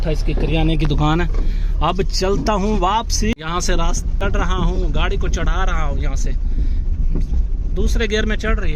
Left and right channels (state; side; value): identical; both; correlation 1.00